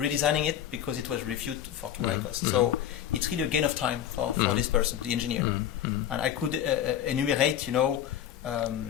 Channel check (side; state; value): right; quieter; 10.4 dB